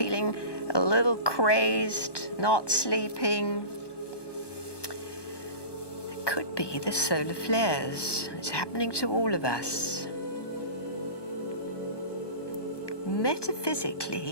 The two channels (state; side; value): late; right; 1.2 ms